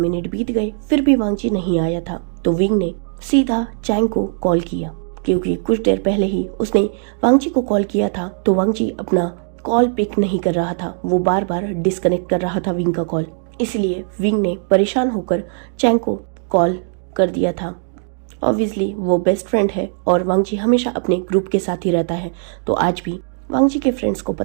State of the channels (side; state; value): left; silent; 62 dB below the other